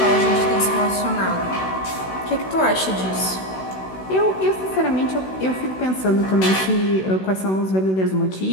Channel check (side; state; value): right; late; 16 ms